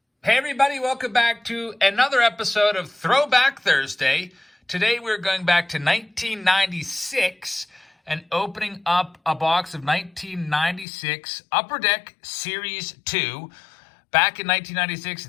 Hey everybody, welcome back to another episode of Throwback Thursday. Today we're going back to 1996 and opening up a box of 1996 Upper Deck Series 2. Back in 1996,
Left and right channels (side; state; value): right; drops out; at 10.9 s